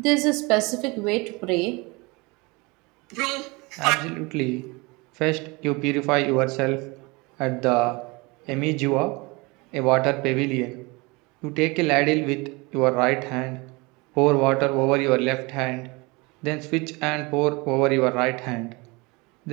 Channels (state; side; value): quieter; left; 26.0 dB